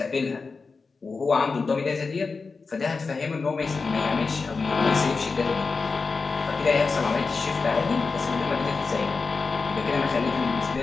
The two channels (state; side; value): quieter; right; 4.5 dB